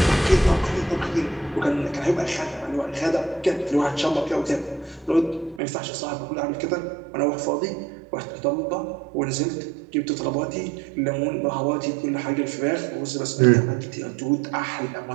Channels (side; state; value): left; drops out; at 5.6 s